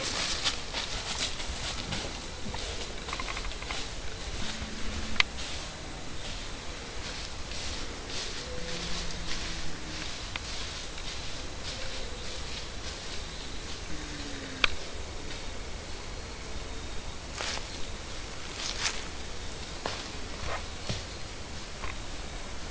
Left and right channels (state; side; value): identical; both; correlation 1.00